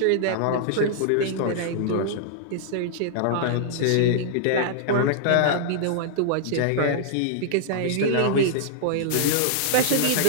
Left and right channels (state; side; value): different; both; correlation -0.01